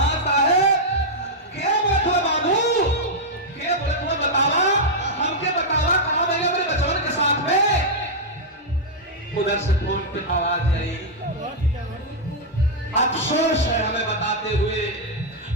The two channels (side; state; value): both; normal; correlation -0.05